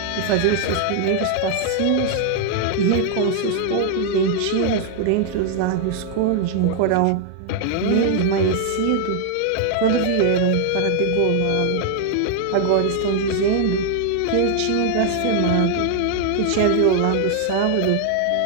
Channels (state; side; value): different; both; correlation 0.00